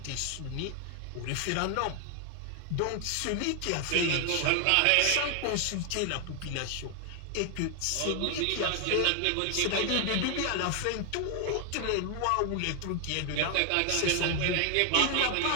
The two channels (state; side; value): different; both; correlation 0.00